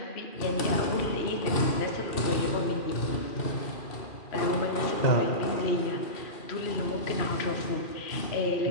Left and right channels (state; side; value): late; right; 2.4 ms